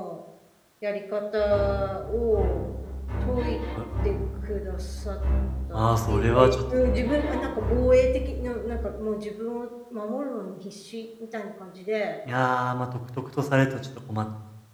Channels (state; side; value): identical; both; correlation 1.00